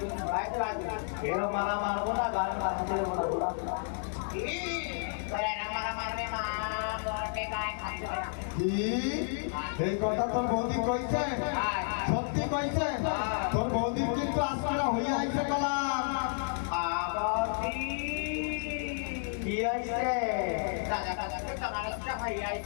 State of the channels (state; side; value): silent; right; digital silence